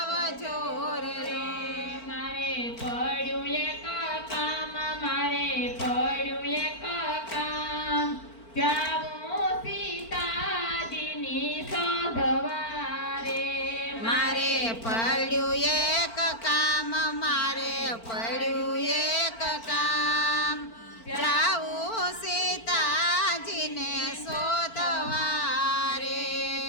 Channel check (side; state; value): right; late; 4.4 ms